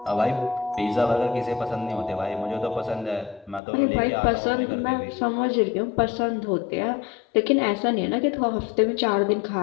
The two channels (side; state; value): right; drops out; at 3.6 s